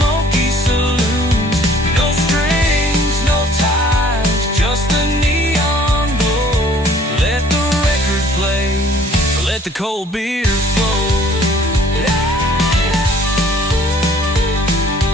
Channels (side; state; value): both; normal; correlation 0.56